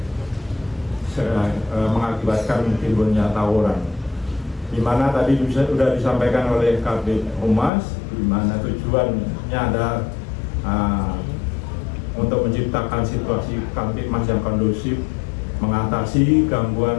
mengakibatkan timbulnya tawuran. Di mana tadi sudah disampaikan oleh Kabid Humas, di mana tujuannya ada untuk menciptakan situasi Kamtibmas yang kondusif, mengatasi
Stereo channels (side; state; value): right; drops out; at 7.7 s